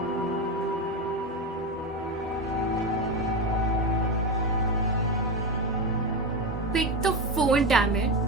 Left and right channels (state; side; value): normal; both; correlation 0.16